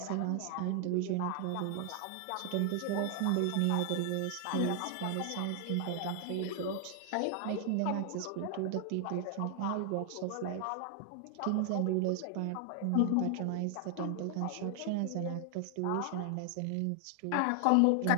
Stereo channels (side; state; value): both; different; correlation 0.00